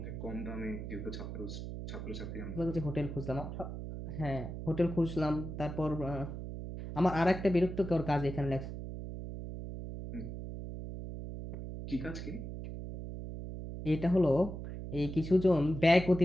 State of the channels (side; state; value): right; noise; hum, 7 dB below the sound